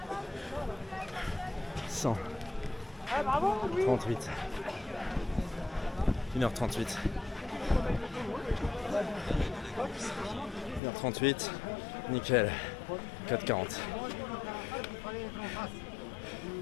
100. 38. 1h38. 1h38. Nickel. 4h40.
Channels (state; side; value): drops out; right; at 10.8 s